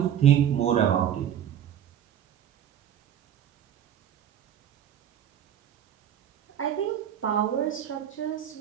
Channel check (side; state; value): left; quieter; 10.0 dB